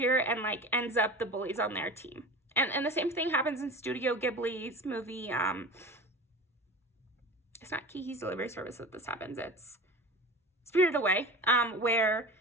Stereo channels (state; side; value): normal; both; correlation 0.33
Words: and, like, ends up the bully's on their team. And the same thing happens in Studio Ghibli's movie. It's not Kiki's Delivery Service that this happens. It's Spirited Away, where